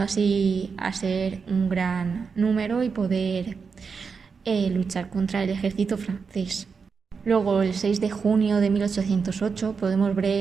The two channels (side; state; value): left; quieter; 5.4 dB